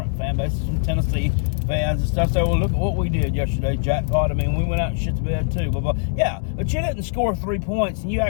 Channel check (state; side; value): silent; right; digital silence